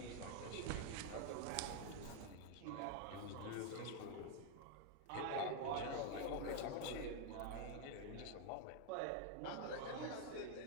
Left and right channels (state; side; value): different; both; correlation 0.00